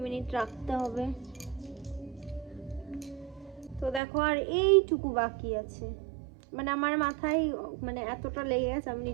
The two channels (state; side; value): drops out; left; at 4.0 s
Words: মিনিট রাখতে হবে। তো দেখো আর এইটুকু বাকি আছে, মানে আমার মাথায় মানে এতটা লেগে গেছে আমি